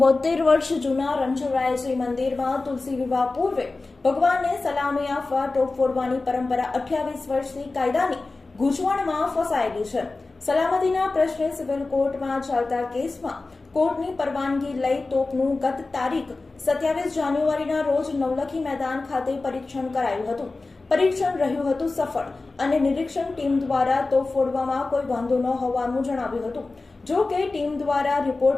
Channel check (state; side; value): quieter; right; 3.5 dB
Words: વર્ષ જૂના રણછોડરાયજી મંદિરમાં તુલસી વિવાહ પૂર્વે ભગવાનને સલામી આપવા ટોપ ફોડવાની પરંપરા 28 વર્ષથી કાયદાની ગૂંચવણમાં ફસાયેલી છે. સલામતીના પ્રશ્ને સિવિલ કોર્ટમાં ચાલતા કેસમાં કોર્ટની પરવાનગી લઈ તોપનું ગત તારીખ 27 જાન્યુઆરીના રોજ નવલખી મેદાન ખાતે પરીક્ષણ કરાયું હતું. પરીક્ષણ રહ્યું હતું સફળ અને નિરીક્ષણ ટીમ દ્વારા તોપ ફોડવામાં કોઈ વાંધો ન હોવાનું જણાવ્યું હતું. જો કે ટીમ દ્વારા